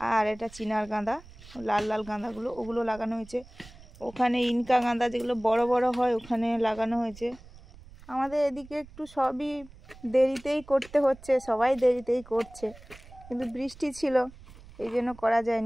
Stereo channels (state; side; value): noise; right; rumble, 20 dB below the sound